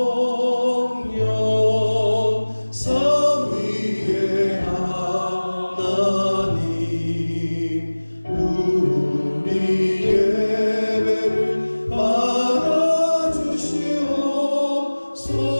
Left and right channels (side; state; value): both; inverted; correlation -1.00